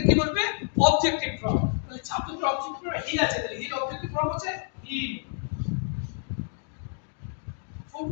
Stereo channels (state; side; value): silent; right; 59 dB below the other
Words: কি বসবে? Objective form. তাহলে সাবজেক্টের অবজেক্টিভ ফর্ম হি আছে, তাহলে হির অবজেক্টিভ ফর্ম হচ্ছে হি।